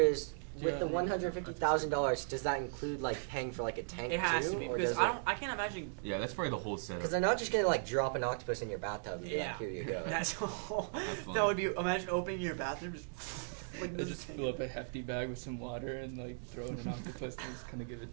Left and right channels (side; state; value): left; silent; digital silence